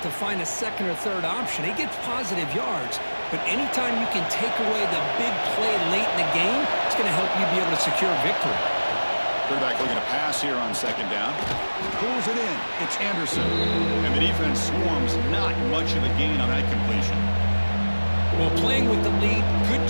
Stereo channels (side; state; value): both; inverted; correlation -1.00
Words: find a 2nd or 3rd option. He gets positive yards, but anytime you can take away the big play late in the game, it's going to help you be able to secure victory. Quarterback looking to pass here on 2nd down. Pulls it in. It's Anderson. And the defense swarms. Not much of a gain on that completion. Well, playing with the lead, good